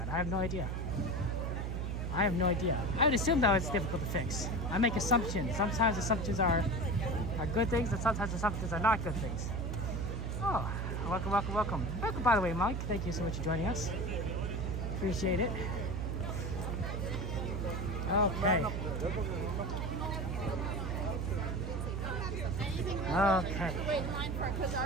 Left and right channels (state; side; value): noise; right; hum, 2 dB below the sound